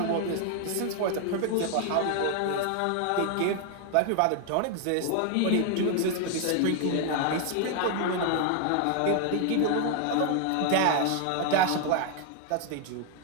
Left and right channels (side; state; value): both; different; correlation 0.00